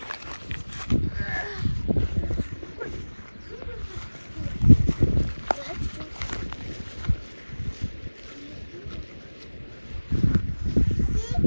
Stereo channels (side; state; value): both; inverted; correlation -1.00